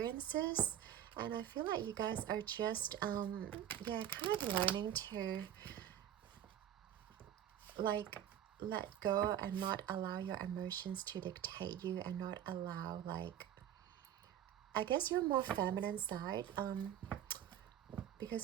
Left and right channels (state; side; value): quieter; left; 10.6 dB